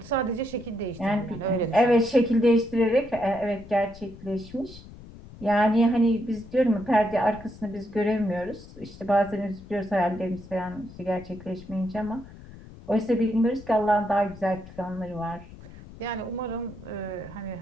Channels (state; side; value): noise; left; rumble, 18 dB below the sound